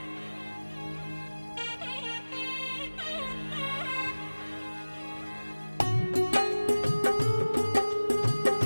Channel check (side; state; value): both; inverted; correlation -1.00